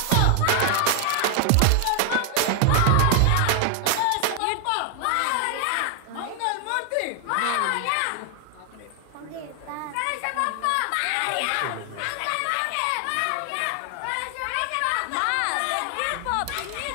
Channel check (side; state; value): both; different; correlation 0.00